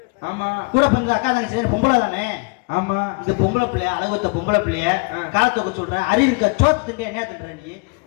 ஆமா கூட பிறந்த அக்கா தங்கச்சி பொம்பளை தானே ஆமா இந்த பொம்பளை பிள்ளைய அழகுத்த பொம்பளை பிள்ளைய காலத்தொக்க சொல்ற அறிவு இருக்க சோத்து திண்டி என்ன தின்ற நீ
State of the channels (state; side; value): quieter; right; 31.1 dB